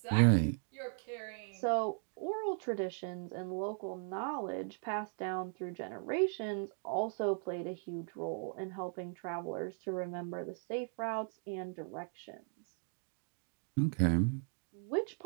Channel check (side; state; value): left; silent; 52 dB below the other